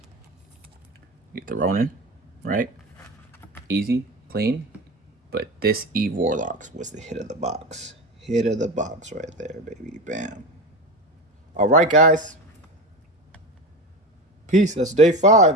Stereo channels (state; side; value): normal; both; correlation 0.24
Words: Get the Ronin, right? Easy, clean. But this Eve Warlocks was the hit of the box. Hit of the box right there, baby. Bam. All right, guys. Peace. That's day